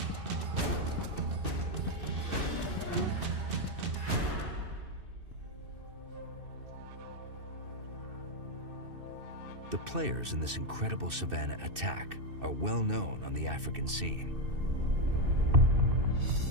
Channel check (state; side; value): late; left; 2.6 ms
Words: The players in this incredible savanna attack are well known on the African scene.